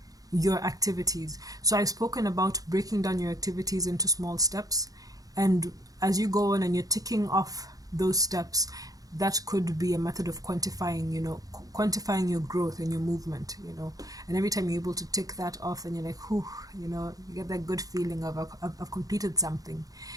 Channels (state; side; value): late; left; 0.17 ms